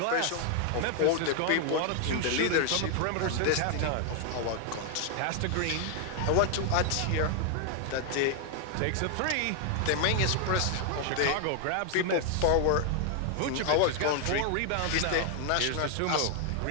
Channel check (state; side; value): different; both; correlation 0.00